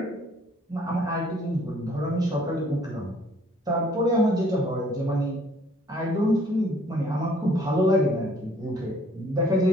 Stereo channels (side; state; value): both; normal; correlation 0.59